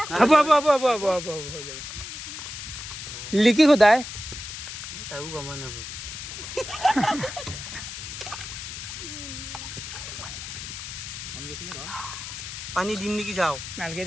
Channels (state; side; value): noise; left; hiss, 9 dB below the sound